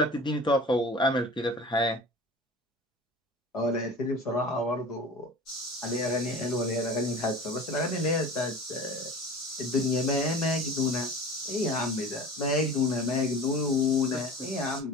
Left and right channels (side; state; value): both; normal; correlation 0.38